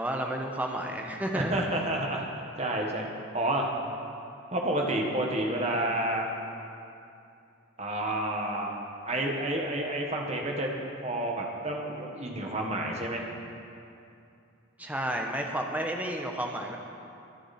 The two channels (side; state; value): both; normal; correlation 0.29